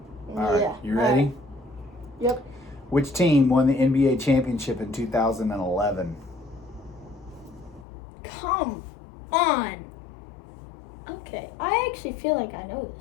All right, Yeah. you ready? Right. Yep. Which team won the NBA championship in 2011? Come on. Okay, I actually feel like I know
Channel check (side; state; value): right; drops out; at 7.9 s